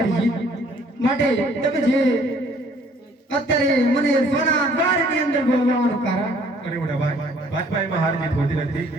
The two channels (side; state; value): both; normal; correlation 0.59